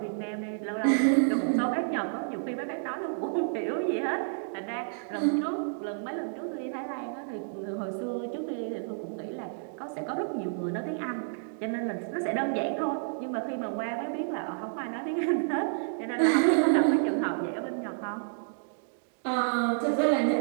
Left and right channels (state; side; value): silent; left; digital silence